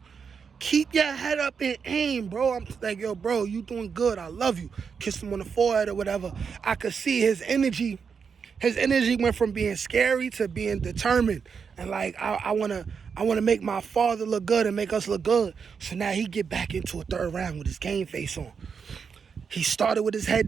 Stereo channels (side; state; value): left; quieter; 6.2 dB